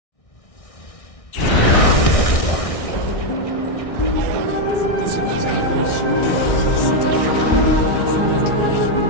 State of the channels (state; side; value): late; right; 1.6 ms